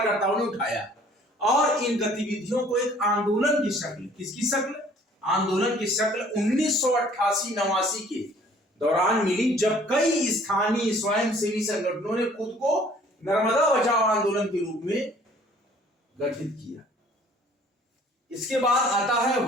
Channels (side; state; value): both; normal; correlation 0.55